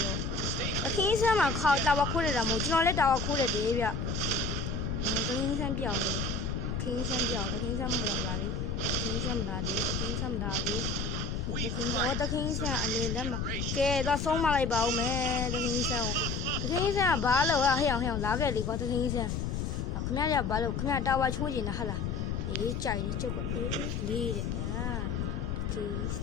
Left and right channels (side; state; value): left; noise; rumble, 1 dB below the sound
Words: တခင်ဆန်းမှာခေါတာဝခိုးနေတာမဟုတ်ကျွန်တော်လည်းတာဝခိုးတယ်လေဗျတခင်ဆန်းပြောင်းလေတခင်ဆန်းမလာပါလေတခင်ဆန်းမလာသေးတခင်ဆန်းတခင်ဆန်းအလေလက်မှာကဲတော့ဆုံးမလိုက်ပါဦးမယ်တခင်ဆန်းကဘာလို့ဟဲ့အောင်လာခဲ့လေကွာတခင်ဆန်းခင်ဗျားကဘာလို့ခင်ဗျားတာဝချိုးနေတာဟာလားအေးကြိုက်လေကျုပ်ကလေးတဲ့တခင်